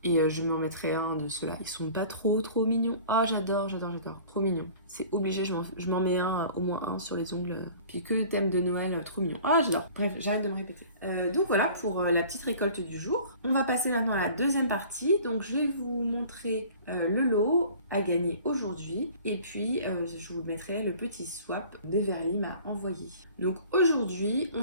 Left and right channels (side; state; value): both; inverted; correlation -0.47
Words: Et je me remettrai un de ceux-là. Ils sont pas trop mignons. Ah, j'adore. Trop mignon. C'est obligé, je m'en mets un, au moins un sur les ongles. Puis que le thème de Noël, trop mignon. Ah, j'adore. Bref, j'arrête de me répéter. Donc voilà pour la petite récolte du jour. On va passer maintenant à la deuxième partie. Donc je vais vous montrer le lot à gagner aujourd'hui. Et puis je vous mettrai le petit swap Beverly m'a envoyé. Donc aujourd'hui,